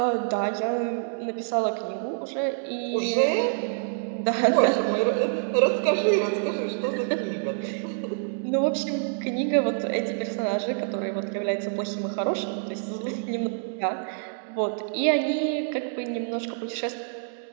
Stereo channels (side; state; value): left; silent; 60 dB below the other